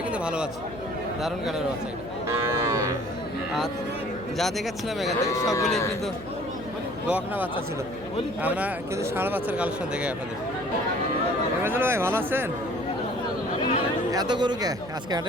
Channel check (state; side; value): noise; left; hum, 15 dB below the sound